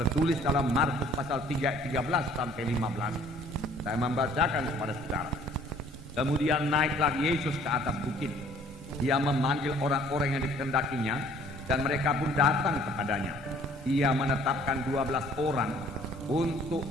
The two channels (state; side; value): normal; both; correlation 0.56